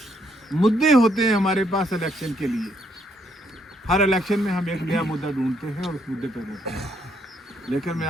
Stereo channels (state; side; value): normal; both; correlation 0.71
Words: मुद्दे होते हैं हमारे पास इलेक्शन के लिए। हर इलेक्शन में हम एक नया मुद्दा ढूंढते हैं और उस मुद्दे पर रहते हैं। लेकिन मैं